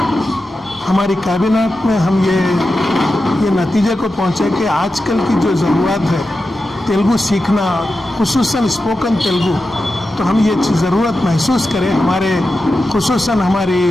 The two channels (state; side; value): normal; both; correlation 0.91